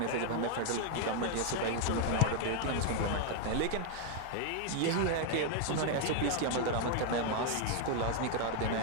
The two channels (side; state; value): both; different; correlation 0.00